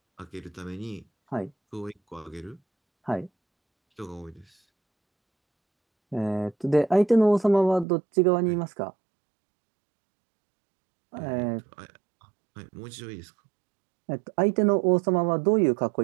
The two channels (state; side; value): drops out; left; at 7.9 s